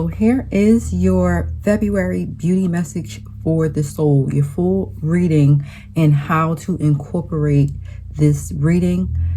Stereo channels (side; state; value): both; identical; correlation 1.00